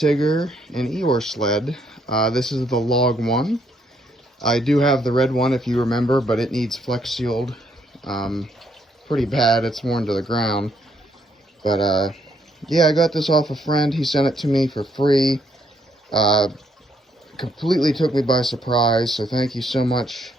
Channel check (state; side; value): normal; both; correlation 0.72